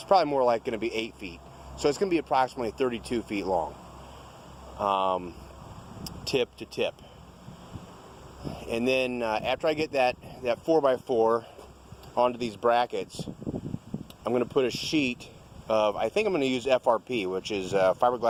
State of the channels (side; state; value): both; identical; correlation 1.00